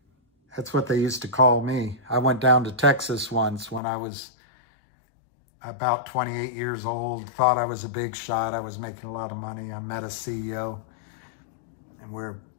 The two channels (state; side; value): drops out; right; at 3.8 s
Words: That's what they used to call me. I went down to Texas once when I was about 28 years old, thought I was a big shot. I was making a lot of money. I met a CEO, and we're